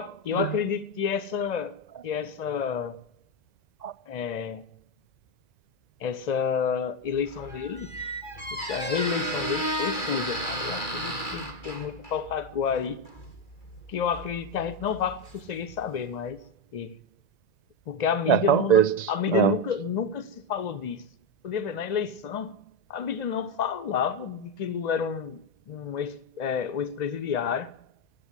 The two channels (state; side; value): late; right; 2.4 ms